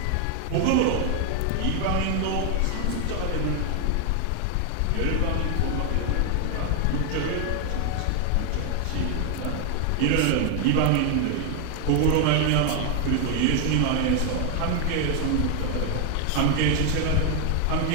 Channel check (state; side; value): different; both; correlation 0.00